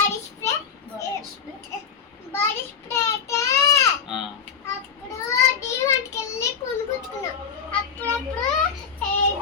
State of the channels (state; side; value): quieter; right; 6.8 dB